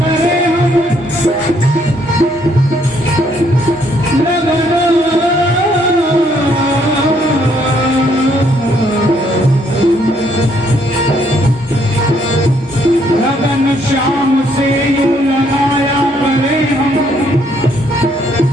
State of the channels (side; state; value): both; normal; correlation 0.69